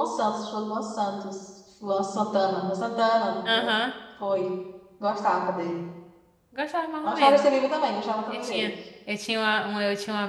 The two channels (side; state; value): both; identical; correlation 1.00